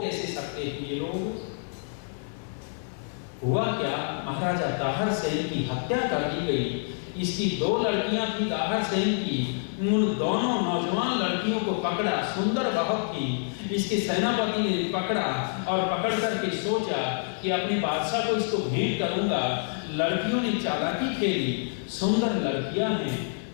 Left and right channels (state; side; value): silent; right; digital silence